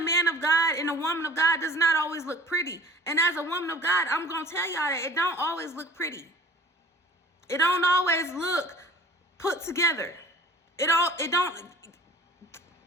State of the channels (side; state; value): both; normal; correlation 0.46